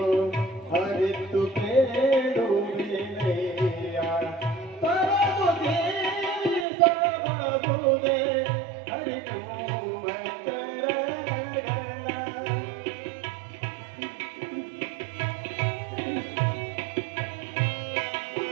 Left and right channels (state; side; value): drops out; left; at 6.7 s